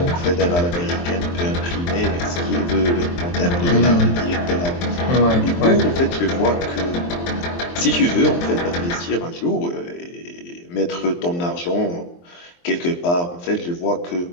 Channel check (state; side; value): late; right; 23 ms